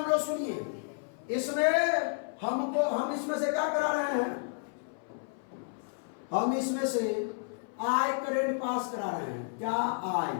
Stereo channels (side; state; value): right; silent; 57 dB below the other